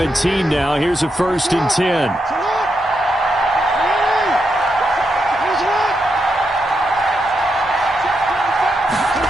now, here's a 1st and 10.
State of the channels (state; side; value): normal; both; correlation 0.83